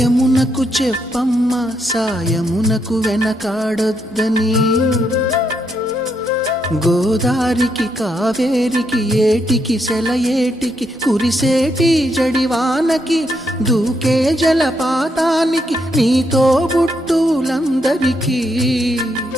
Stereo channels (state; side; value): normal; both; correlation 0.78